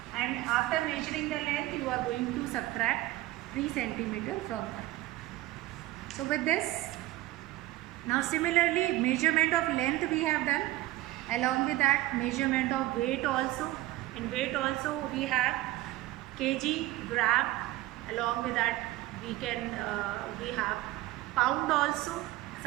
And after measuring the length, you are going to subtract 3 centimeter from that. So with this, now similarly measurement of length we have done. Along with that, measurement of weight also. In weight also we have kg, gram. Along with that, we have pound also.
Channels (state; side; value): quieter; left; 17.1 dB